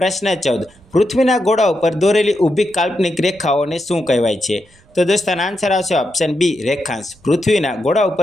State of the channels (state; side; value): noise; right; rumble, 30 dB below the sound